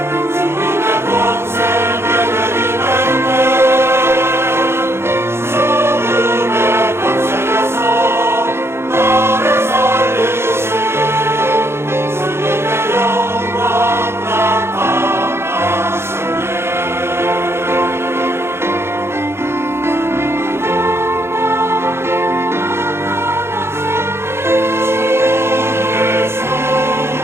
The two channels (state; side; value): late; left; 0.12 ms